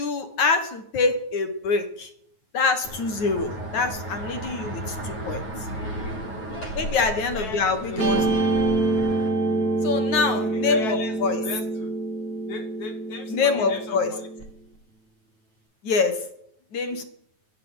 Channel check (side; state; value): right; late; 9.3 ms